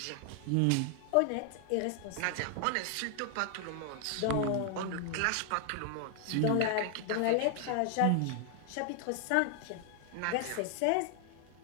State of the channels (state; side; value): different; both; correlation 0.00